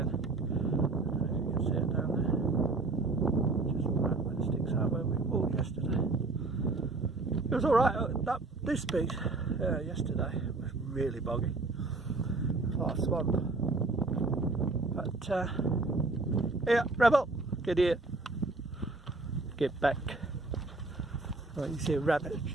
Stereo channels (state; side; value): quieter; left; 3.4 dB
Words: I don't know if you can see it down there. Just right when it sticks out where we walked yesterday. It was alright. This beach yesterday was really boggy. A lot of swamp. But yeah, Rebel, get here. Get back. Well, you see a rabbit